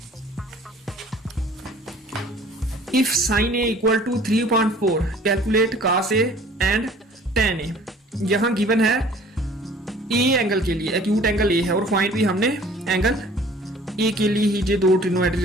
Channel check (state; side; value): normal; both; correlation 0.51